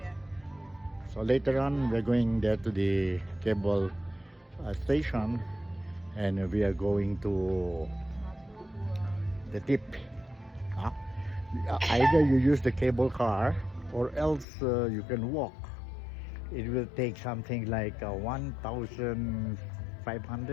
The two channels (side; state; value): right; drops out; at 14.5 s